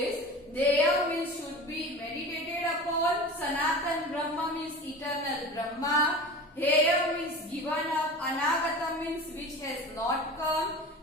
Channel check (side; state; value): both; normal; correlation 0.34